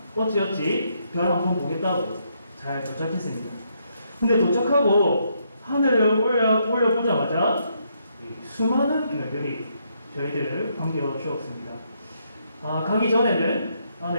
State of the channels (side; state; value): both; inverted; correlation -0.75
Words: 어찌어찌 별 한번 보겠다고 잘 도착했습니다. 근데 도착하고 하늘을 올려보자마자 수많은 별들이 저희들을 반겨주었습니다. 가기 전에는